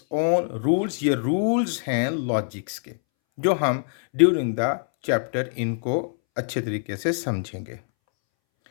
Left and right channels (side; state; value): right; silent; 62 dB below the other